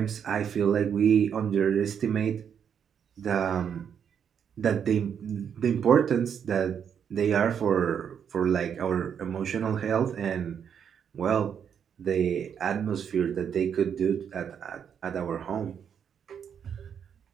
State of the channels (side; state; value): left; quieter; 7.9 dB